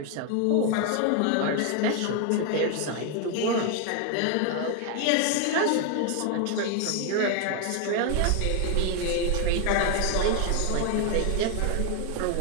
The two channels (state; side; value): different; both; correlation 0.01